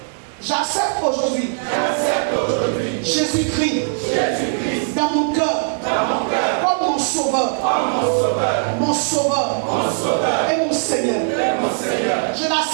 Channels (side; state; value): left; silent; 66 dB below the other